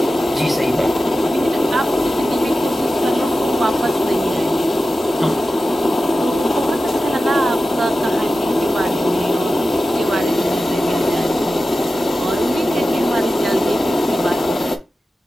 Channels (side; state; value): both; normal; correlation 0.93